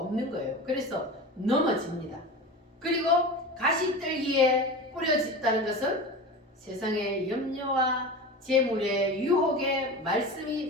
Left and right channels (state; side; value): normal; both; correlation 0.30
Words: 거예요. 그래서 넘어집니다. 그리고 가시떨기에 뿌려졌다는 것은 세상의 염려와 재물의 유혹에